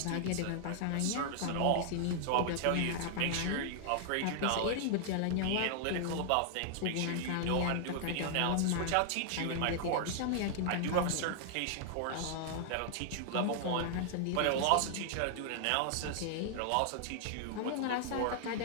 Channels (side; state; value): both; different; correlation -0.01